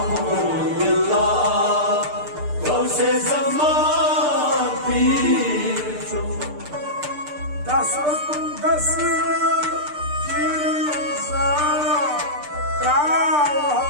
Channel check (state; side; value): late; left; 6.7 ms